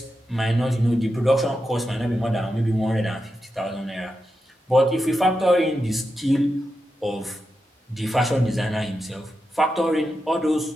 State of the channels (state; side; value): normal; both; correlation 0.88